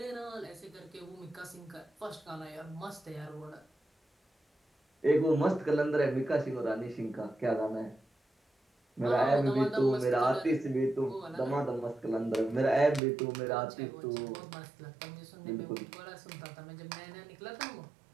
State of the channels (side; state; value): left; drops out; at 13.0 s